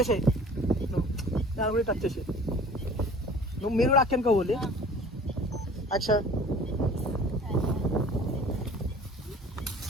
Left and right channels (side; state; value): both; normal; correlation 0.46